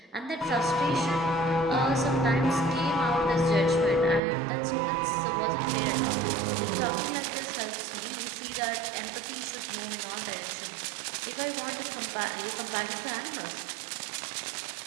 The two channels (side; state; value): left; drops out; at 4.2 s